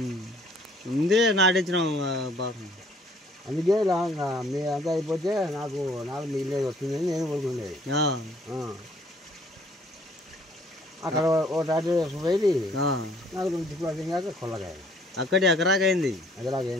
ఉంది నాటించినాం బాగా అందుకే మీ అంతా అయిపోతే నాకు మిగిలేదు వస్తుందని నేను కోరుకునేది అక్కడ ఓ టాటా పోయి నాకు 2 చిక్కులు కాక కొల్లగాయ అక్కడి ఎకరాకైంది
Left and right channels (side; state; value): both; normal; correlation 0.60